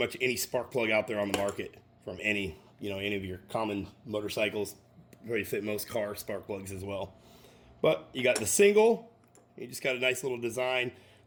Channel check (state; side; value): identical; both; correlation 1.00